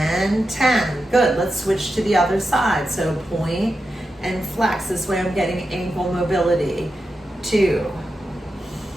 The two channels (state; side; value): normal; both; correlation 0.89